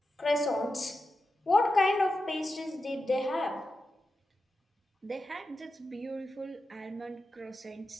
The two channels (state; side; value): normal; both; correlation 0.90